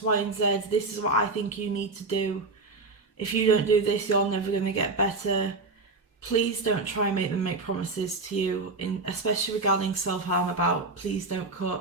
Y and Z, this is what I think you need to do, if you don't do this you're never going to get better. Please don't try and make them make promises to you, especially regarding self-harm, about please don't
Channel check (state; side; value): quieter; left; 3.5 dB